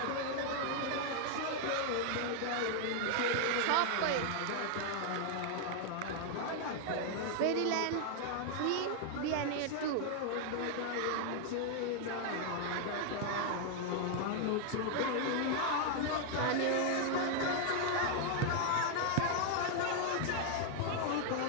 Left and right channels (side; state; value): both; different; correlation 0.00